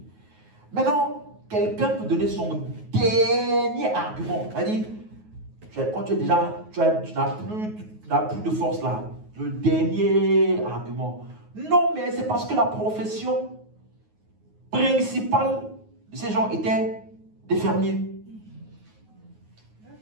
Maintenant, quelqu'un peut donner son dernier argument. C'est-à-dire, quand tu es déjà, tu n'as plus de force là. Le dernier argument. Non, mais c'est parce que la profession principale de ces gens était des fermiers.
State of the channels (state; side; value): late; left; 9.4 ms